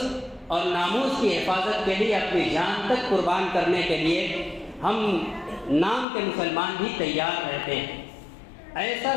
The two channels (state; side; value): drops out; right; at 6.1 s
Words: اور ناموس کی حفاظت کے لیے اپنی جان تک قربان کرنے کے لیے ہم نام کے مسلمان بھی تیار رہتے ہیں۔ ایسا